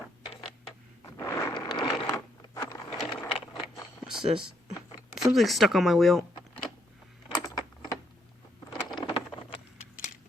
What's this? Something's stuck on my wheel.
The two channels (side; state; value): both; normal; correlation 0.73